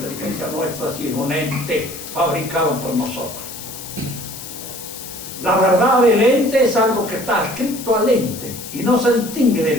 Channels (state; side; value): noise; left; hiss, 11 dB below the sound